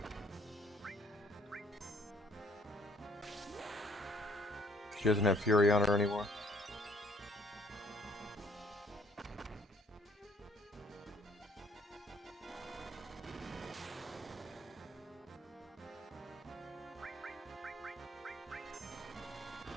She doesn't have Fury on her anymore.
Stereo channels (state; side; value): normal; both; correlation 0.61